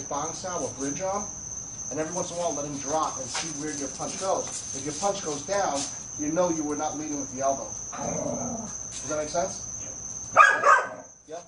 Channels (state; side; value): identical; both; correlation 1.00